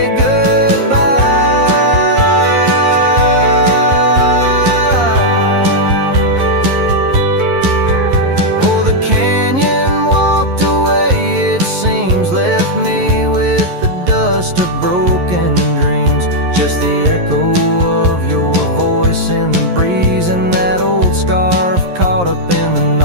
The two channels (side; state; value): left; late; 11 ms